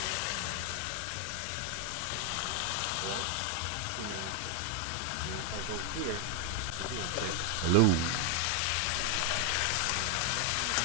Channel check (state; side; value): different; both; correlation 0.01